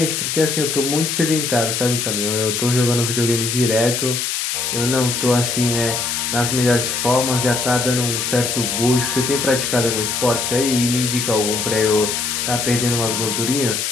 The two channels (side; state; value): left; noise; hiss, 1 dB below the sound